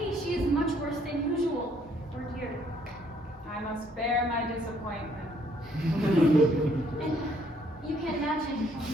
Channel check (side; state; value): both; normal; correlation 0.66